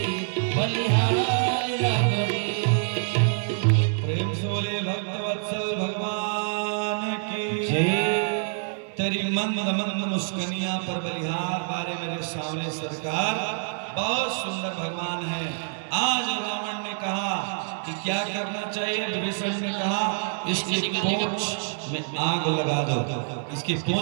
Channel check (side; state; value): left; silent; 61 dB below the other